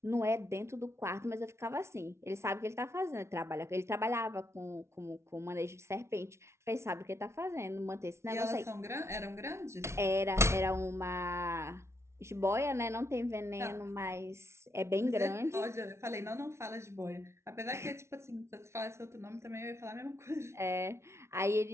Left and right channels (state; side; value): late; left; 0.13 ms